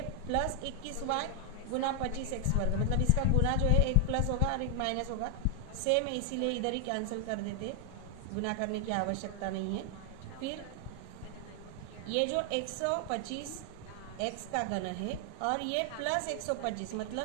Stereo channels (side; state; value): both; different; correlation 0.00